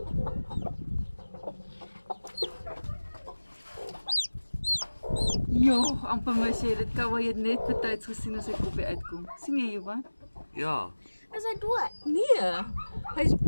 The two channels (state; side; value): inverted; both; correlation -1.00